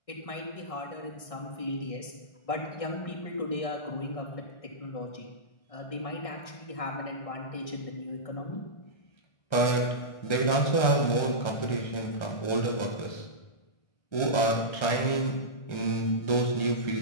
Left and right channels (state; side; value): late; right; 1.3 ms